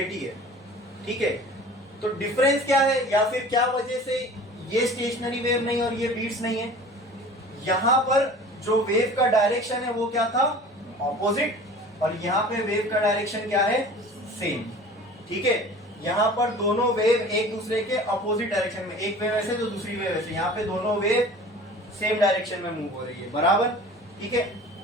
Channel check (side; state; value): both; normal; correlation 0.42